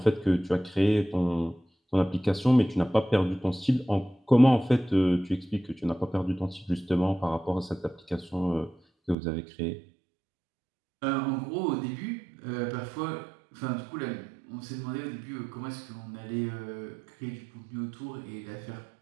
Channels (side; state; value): left; drops out; at 9.2 s